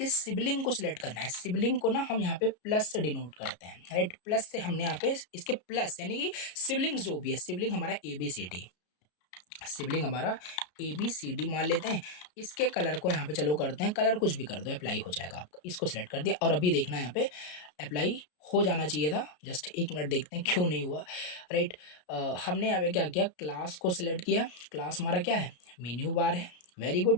सिबलिंग को सिलेक्ट करना है, सिबलिंग को ना हम यहाँ पे प्लस से डिनोट करते हैं, राइट। प्लस से हमने यहाँ पे इसके प्लस यानी कि सिबलिंग जो भी है, सिबलिंग हमारा एबीसीडी, सिबलिंग हमारा एबीसीडी मान लेते हैं। इसके कलर को यहाँ पे चलो करते हैं, कलर कुछ भी कर दो अप्लाई हो जाएगा आपका, इसको सिलेक्ट कर दिया, और अभी देखना यहाँ पे अप्लाई हो जाना चाहिए था, जस्ट एक मिनट देखते हैं क्यों नहीं हुआ, राइट। हमने यहाँ पे क्या किया, क्लास को सिलेक्ट किया, क्लास हमारा क्या है, मेन्यू बार है, वेरी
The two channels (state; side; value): late; right; 33 ms